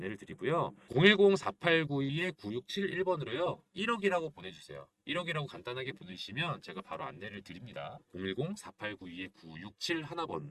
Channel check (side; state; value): both; identical; correlation 1.00